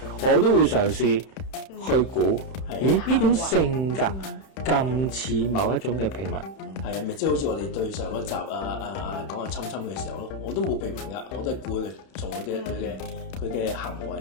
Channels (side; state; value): right; late; 31 ms